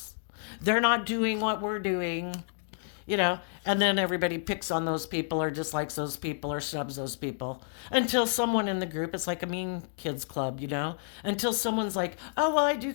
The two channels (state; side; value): silent; right; digital silence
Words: They're not doing what we're doing. And then everybody picks on those people or dislikes those people or snubs those people until someone in the group, it's like a mean kids club, until someone's like, oh, well, I do